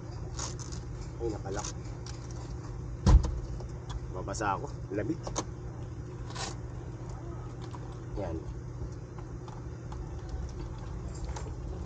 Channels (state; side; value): identical; both; correlation 1.00